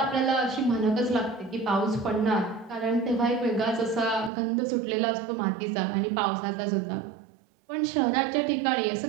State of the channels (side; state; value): left; drops out; at 4.3 s